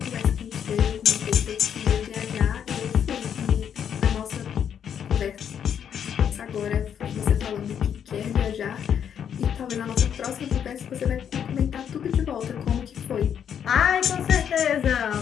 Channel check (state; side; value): quieter; right; 8.5 dB